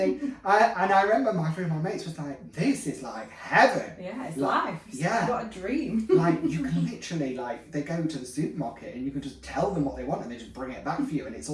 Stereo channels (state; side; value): identical; both; correlation 1.00